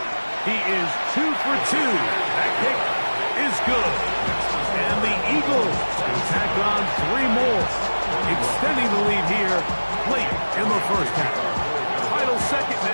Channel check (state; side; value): inverted; both; correlation -1.00